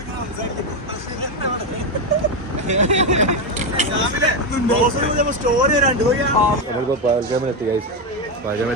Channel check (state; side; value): normal; both; correlation 0.09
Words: സ്റ്റോറി വരാണ്ട് നമ്മളിപ്പോൾ പകൽഗാമിലെത്തി ഗൈസ്.